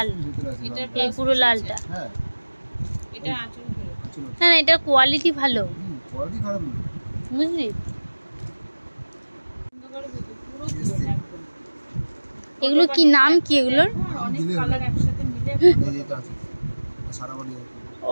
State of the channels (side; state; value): both; inverted; correlation -1.00